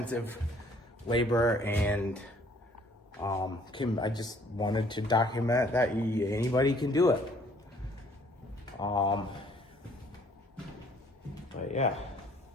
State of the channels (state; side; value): normal; both; correlation 0.59